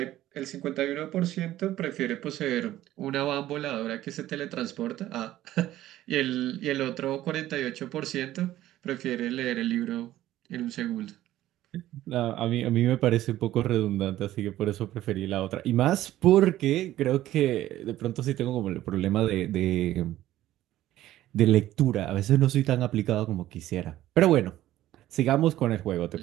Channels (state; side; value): quieter; left; 14.2 dB